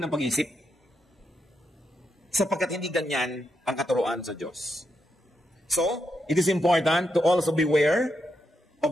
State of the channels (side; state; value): both; normal; correlation 0.82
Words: pag-iisip. Sapagkat hindi ganyan ang katuruan sa Diyos. So, it is important to also beware